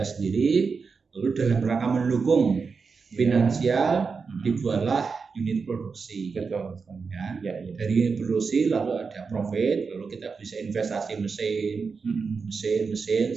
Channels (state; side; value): quieter; left; 5.1 dB